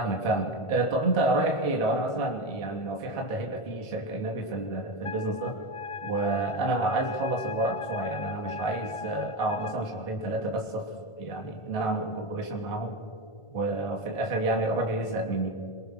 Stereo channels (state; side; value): late; right; 1.5 ms